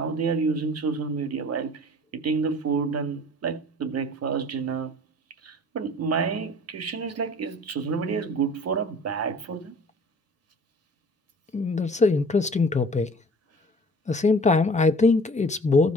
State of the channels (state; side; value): normal; both; correlation 0.46